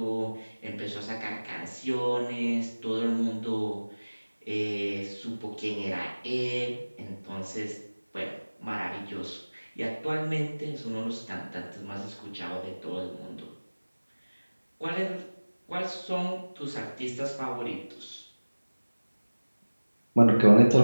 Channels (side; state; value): both; inverted; correlation -1.00